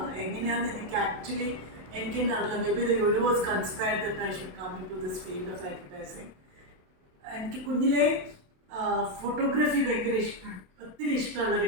എങ്ങനെയാണെന്ന് എനിക്ക് ആക്ച്വലി എനിക്ക് തന്നെ അറിയില്ല. Maybe the universe conspired that I should come into this field of advertising. എനിക്ക് കുഞ്ഞിലെ ഫോട്ടോഗ്രാഫി ഭയങ്കര ഒത്തിരി ഇഷ്ടമുള്ളൊരു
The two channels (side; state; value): left; late; 27 ms